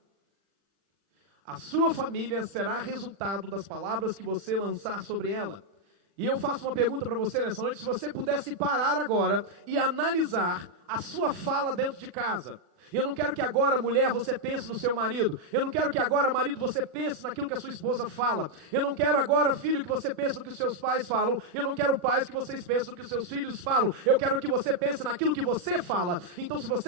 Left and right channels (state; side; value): late; left; 40 ms